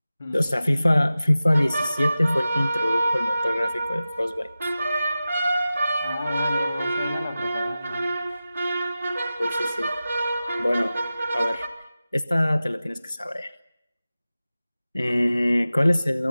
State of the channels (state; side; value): inverted; both; correlation -0.95